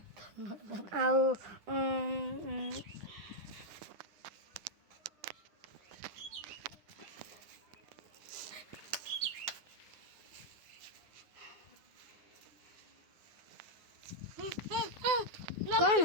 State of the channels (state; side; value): late; left; 9.8 ms